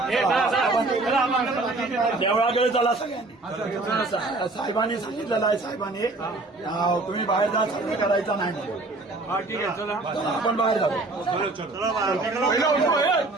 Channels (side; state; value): left; quieter; 3.1 dB